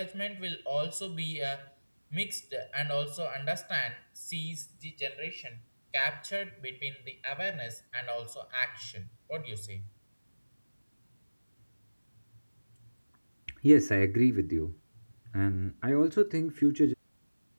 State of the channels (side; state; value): both; inverted; correlation -1.00